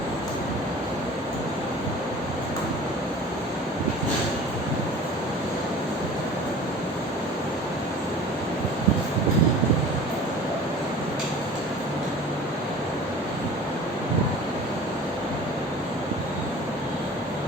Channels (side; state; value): both; normal; correlation 0.42